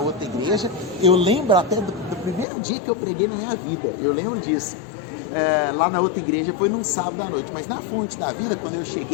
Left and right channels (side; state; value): right; drops out; at 2.5 s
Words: igreja. Eu lembro até do primeiro dia que eu preguei na minha vida. Eu lembro disso. Lá na outra igreja foi num sábado à noite. Mas na Fonte da Vida, quando eu